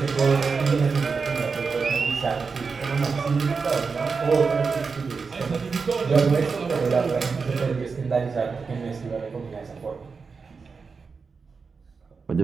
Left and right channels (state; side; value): quieter; left; 5.0 dB